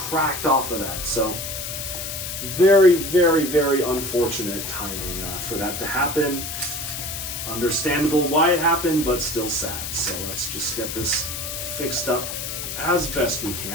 off of that, so very, very, very unfortunate timing for that to happen. Understandable why it happened, but still sad. So let's just get this fixed up as best we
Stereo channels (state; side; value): noise; left; hiss, 5 dB below the sound